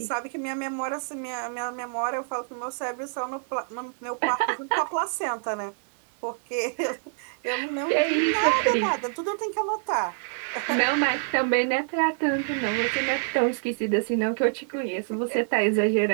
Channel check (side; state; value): left; silent; 55 dB below the other